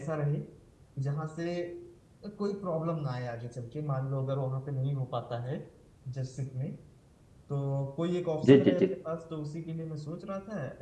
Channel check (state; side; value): identical; both; correlation 1.00